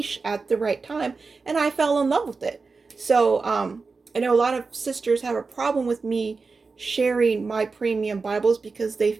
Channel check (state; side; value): quieter; left; 4.3 dB